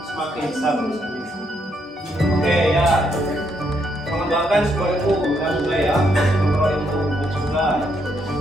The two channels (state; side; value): normal; both; correlation 0.75